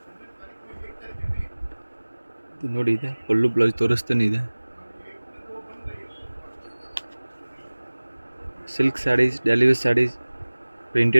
ನೋಡಿ ಇದೆ ಪಲ್ಲು ಬ್ಲೌಸ್ ತೋರಿಸ್ತಾನೆ ಇದೆ. Silk saris, daily wear saris,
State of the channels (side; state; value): both; inverted; correlation -1.00